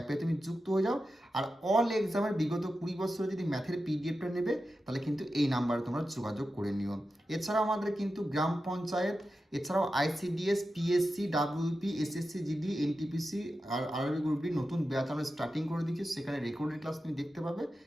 তুমি যুক্ত হয়ে যাও, আর অল এক্সামের বিগত 20 বছরে যদি ম্যাথের পিডিএফটা নেবে তাহলে কিন্তু এই নাম্বারে তোমরা যোগাযোগ করে নিও। এছাড়াও আমাদের কিন্তু গ্রাম পঞ্চায়েত, এছাড়াও ICDS, PSC, WP, SSC GD, NTPC RRB গ্রুপটি নতুন ব্যাচ আমরা স্টার্টিং করে দিচ্ছি, সেখানে রেকর্ডেড ক্লাস তুমি দেখতে পাবে,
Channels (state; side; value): normal; both; correlation 0.91